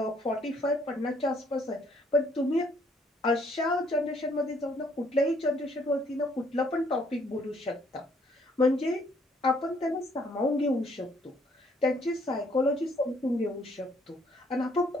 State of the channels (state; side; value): normal; both; correlation 0.66